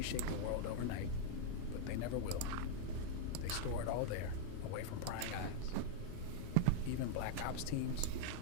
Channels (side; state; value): both; different; correlation -0.01